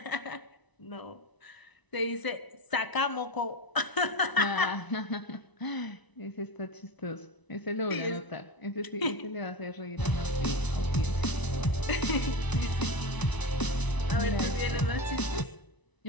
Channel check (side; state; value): right; late; 1.0 ms